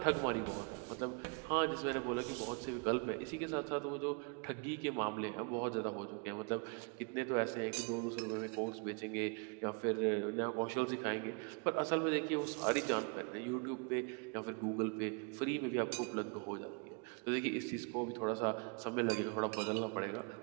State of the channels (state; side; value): quieter; left; 34.4 dB